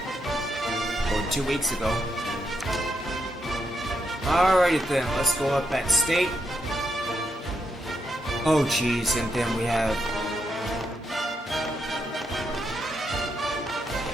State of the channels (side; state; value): both; normal; correlation 0.81